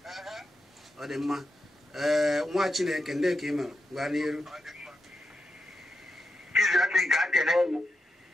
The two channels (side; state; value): both; normal; correlation 0.86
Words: Ọ dị mma. Nwa Chineke ndị ka ị mere gwa n'iru.